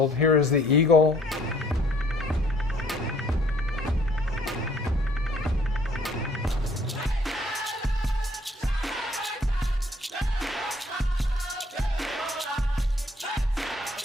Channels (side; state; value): both; normal; correlation 0.61